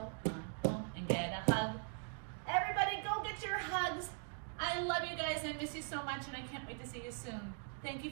on. Thank you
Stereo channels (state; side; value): silent; left; 50 dB below the other